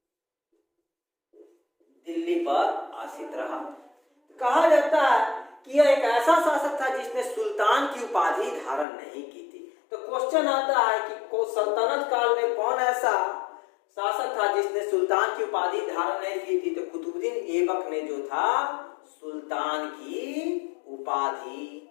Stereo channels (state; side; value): drops out; right; at 8.8 s